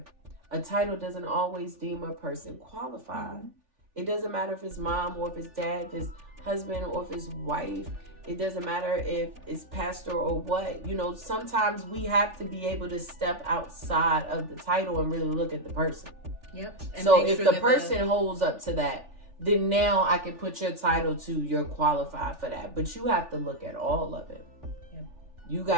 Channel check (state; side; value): late; left; 3.4 ms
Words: A title doesn't always deem a person qualified. It doesn't matter if it's mom or if it's dad, if it's husband or if it's wife. It doesn't matter if it's pastor or what. Sometimes we have to be able to step outside of the title and really look at the person. Yep. So if the person holds up to that, then now I can put your title to you're qualified for that. But you have to look at all of it. Yep. You